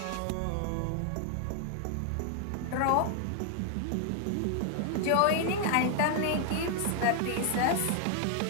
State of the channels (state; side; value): different; both; correlation 0.00